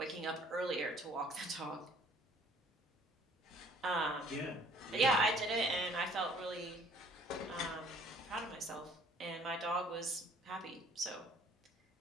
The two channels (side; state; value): both; normal; correlation 0.57